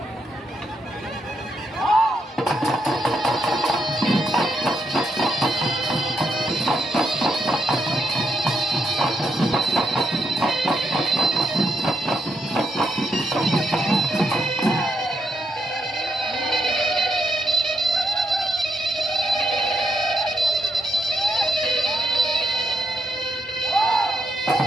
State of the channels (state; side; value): normal; both; correlation 0.80